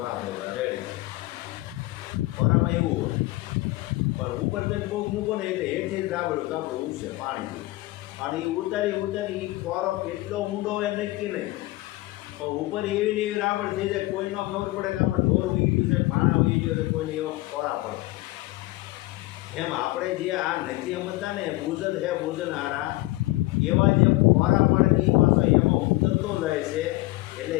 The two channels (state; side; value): quieter; right; 19.7 dB